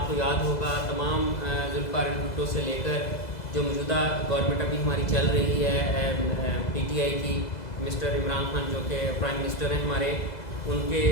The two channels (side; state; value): right; late; 2.0 ms